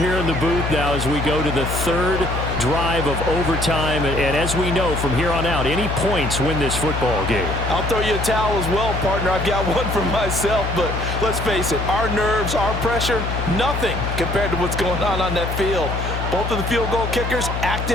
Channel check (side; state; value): left; noise; hum, 4 dB below the sound